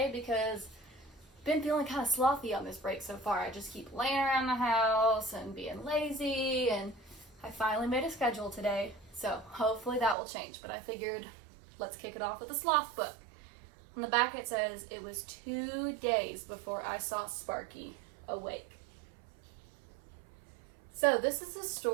because I've been feeling kind of slothy on this break so far. I just keep laying around the house and being lazy, and I finally made a schedule today, so hopefully that will change. But I figured let's kick it off with a sloth book. On the back it says, it was 2 days before I saw Sparky awake. So this is a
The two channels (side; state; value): left; drops out; at 10.2 s